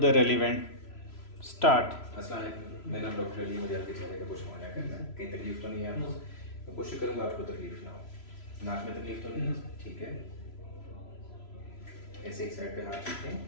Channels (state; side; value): late; right; 3.0 ms